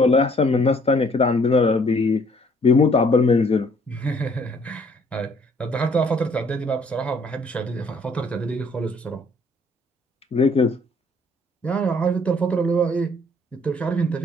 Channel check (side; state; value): both; normal; correlation 0.61